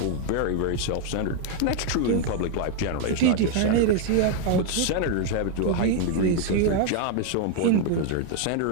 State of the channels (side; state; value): both; different; correlation 0.01